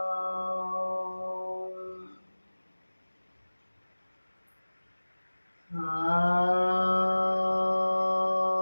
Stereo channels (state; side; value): inverted; both; correlation -1.00